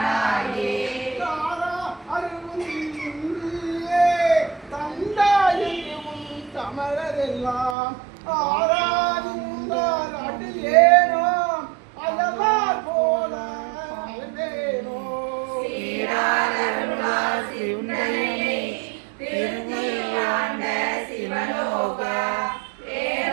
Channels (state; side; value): drops out; left; at 7.8 s